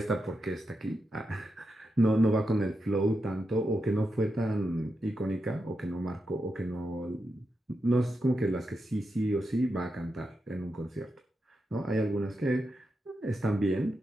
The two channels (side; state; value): both; normal; correlation 0.87